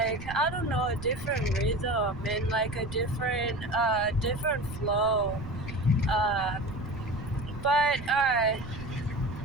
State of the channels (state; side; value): noise; right; rumble, 12 dB below the sound